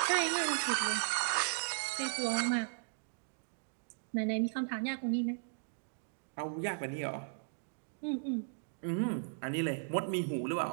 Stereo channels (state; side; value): silent; left; digital silence